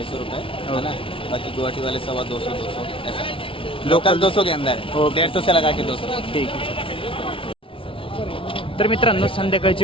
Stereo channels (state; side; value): late; right; 0.25 ms